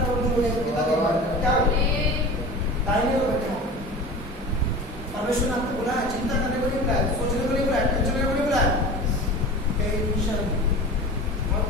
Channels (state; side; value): normal; both; correlation 0.35